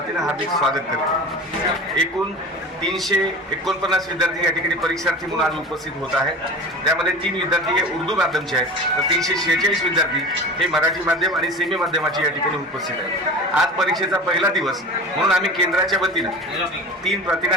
हार्दिक स्वागत करतो। एकूण 349 विद्यार्थी या ठिकाणी परीक्षार्थी म्हणून आज उपस्थित होत आहेत। त्यामध्ये 3 विद्यार्थी हे उर्दू माध्यमचे आहेत, तर 346 विद्यार्थी हे मराठी माध्यम आणि सेमी माध्यमाचे या ठिकाणी उपस्थित आहेत। आज परीक्षेचा पहिला दिवस म्हणून आम्ही केंद्राच्या वतीनं 3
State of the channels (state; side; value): normal; both; correlation 0.34